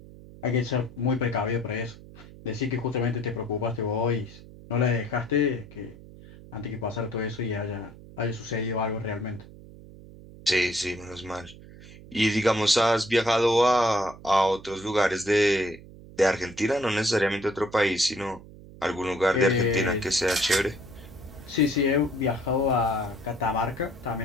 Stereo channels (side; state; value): right; noise; hum, 18 dB below the sound